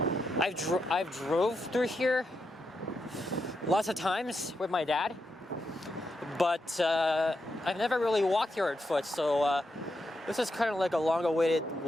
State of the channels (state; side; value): normal; both; correlation 0.84